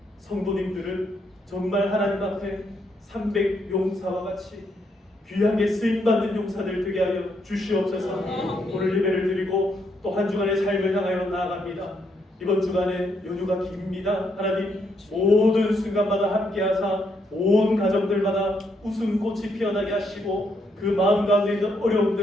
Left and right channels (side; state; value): both; normal; correlation 0.76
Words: 성도님들은 정말 하나님 앞에 300용사와 같이 귀하게 쓰임받는 용사들 되게 하여 주시옵소서. 오늘 예배를 드리고 또 한 주간의 삶을 향하여 나아갑니다. 이번 주간에 연휴가 깁니다. 하나님 모든 순간마다 함께하사 온 가정들마다 웃음꽃이 피어나게 하시고 그 마음 가운데 있는